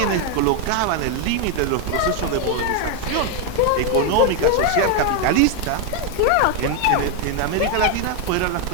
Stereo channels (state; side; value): different; both; correlation 0.01